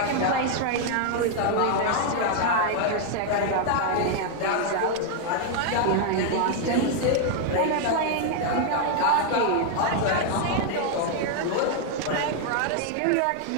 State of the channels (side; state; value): both; different; correlation 0.00